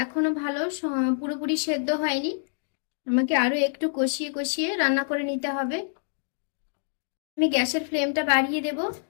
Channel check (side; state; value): right; silent; digital silence